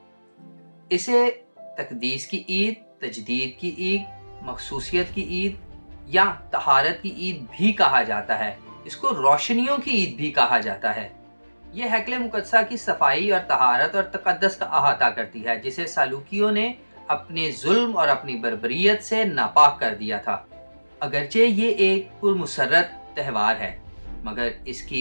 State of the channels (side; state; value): both; inverted; correlation -1.00